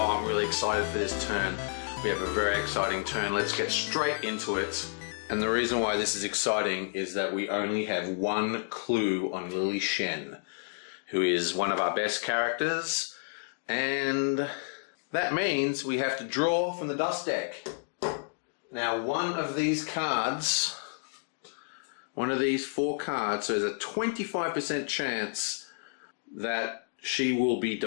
I'm really excited for this turn. We have a very exciting turn. Let's get straight into it. And the reason why this is exciting is that we only have one clue on Lily Shen, who is one of our best characters, and that means we have to draw from the dust deck. Now, one of these cards, one of these 4 cards, so there's a 25% chance that she will be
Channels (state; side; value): silent; right; digital silence